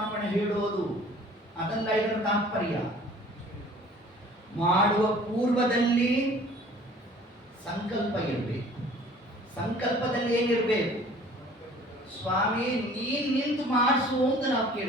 ಹೇಳೋದು ಅದಲ್ಲ ಇದರ ತಾತ್ಪರ್ಯ. ಮಾಡುವ ಪೂರ್ವದಲ್ಲಿ ಸಂಕಲ್ಪ ಇರಬೇಕು. ಸಂಕಲ್ಪದಲ್ಲಿ ಏನಿರಬೇಕು? ಸ್ವಾಮಿ ನೀನ್ ನಿಂತು ಮಾಡಿಸು ಅಂತ ನಾವು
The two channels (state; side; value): normal; both; correlation 0.50